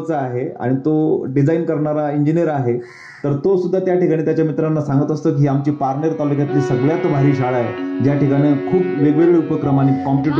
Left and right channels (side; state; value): both; identical; correlation 1.00